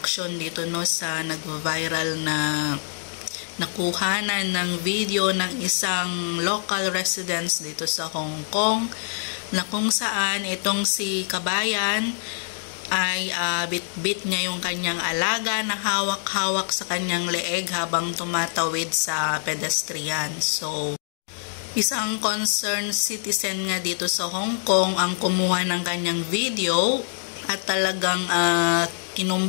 dito no sa nag-viral na nakuhanan ng video ng isang local residents dito sa Hong Kong na kung saan itong si Kabayan ay bit-bit niya yung kanyang alaga na hawak-hawak sa kanyang leeg habang tumatawid sa pedestrian. So isang concerned citizen nga dito sa Hong Kong ang kumuha ng kanyang video at talagang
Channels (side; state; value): right; silent; digital silence